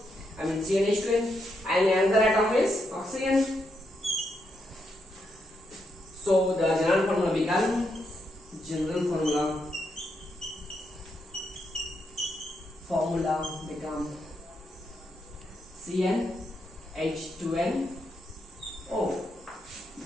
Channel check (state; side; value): normal; both; correlation 0.81